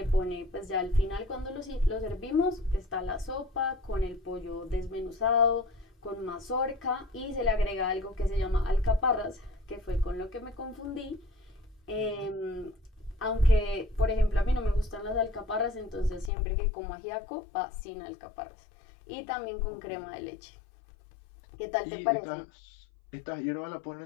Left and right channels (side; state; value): right; drops out; at 16.3 s